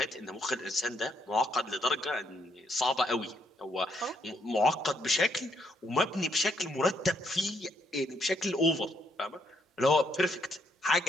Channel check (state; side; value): normal; both; correlation 0.73